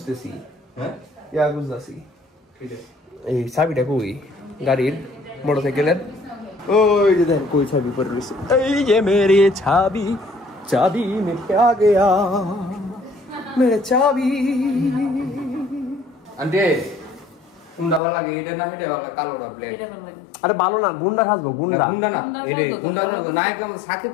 হ্যাঁ ইয়া খুঁজতেছি ঠিক আছে এই চাবিটা কই গাড়ির মোটরসাইকেলের ওই যে দেখ কই চাবি পড়ে রয়েছে এই যে মেরে চাবি में क्या गया मेरे চাবি আন্টি গুন্ডা ভালো লাগে এটা না এটা ভালো কালো না ব্লেড এটা ভালো লাগে আরে ভালো না গুন্ডা খাসবো গুন্ডা গুন্ডা না এটা গুন্ডা না নায়ক সাকিব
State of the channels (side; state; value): right; drops out; at 18.0 s